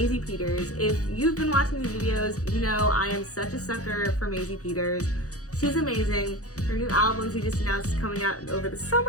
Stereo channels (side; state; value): right; late; 0.66 ms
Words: Peters. If you've been watching these videos, you know I am such a sucker for Maisie Peters. She's amazing. Her new album she just announced is coming out over the